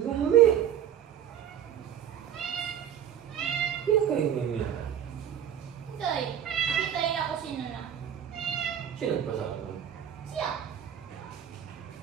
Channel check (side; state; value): left; quieter; 9.7 dB